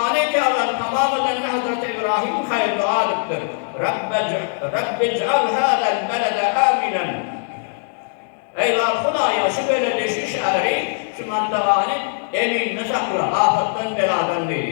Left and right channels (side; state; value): right; silent; digital silence